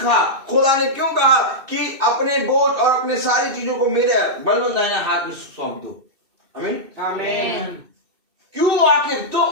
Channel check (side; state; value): left; late; 2.6 ms